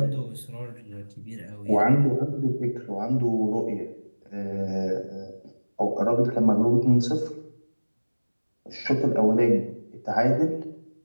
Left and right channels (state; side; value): inverted; both; correlation -1.00